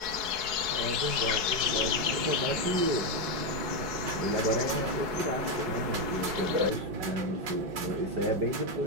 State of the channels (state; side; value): late; left; 4.7 ms